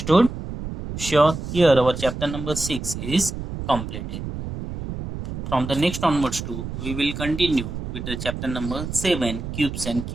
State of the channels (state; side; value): noise; right; rumble, 7 dB below the sound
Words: Sure. Here our chapter number 6 is completed. from the next onwards too, we will continue with the chapter number 7, cubes and